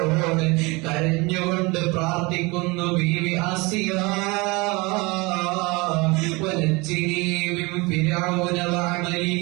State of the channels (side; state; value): left; quieter; 25.5 dB